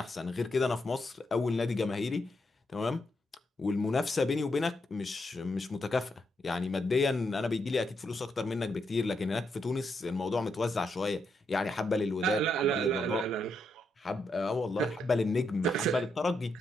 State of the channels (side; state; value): both; normal; correlation 0.81